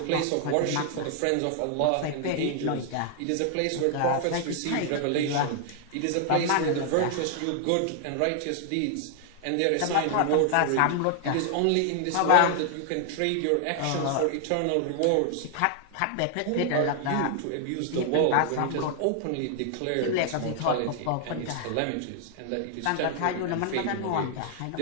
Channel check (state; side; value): different; both; correlation 0.00